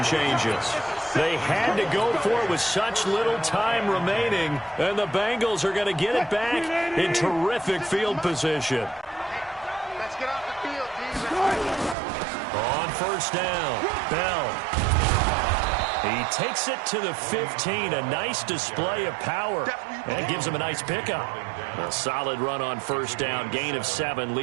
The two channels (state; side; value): drops out; left; at 12.0 s